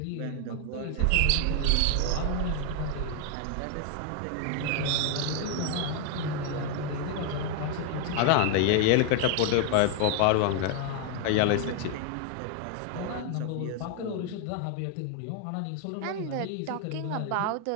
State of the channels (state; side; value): different; both; correlation 0.01